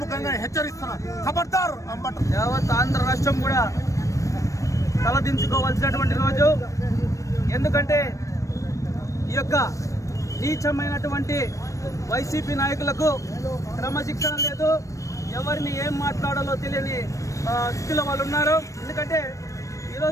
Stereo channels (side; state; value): right; late; 0.16 ms